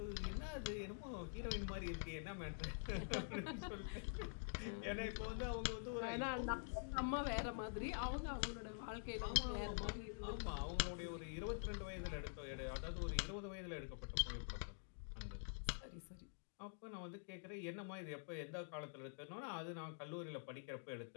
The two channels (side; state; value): right; silent; digital silence